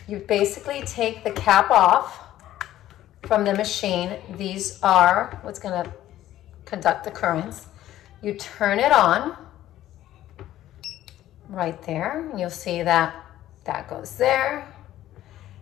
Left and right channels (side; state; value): right; quieter; 13.5 dB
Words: You basically take the cap off from the machine. These are what's gonna conduct the currents. You turn it on right there, and you'll see that that goes there,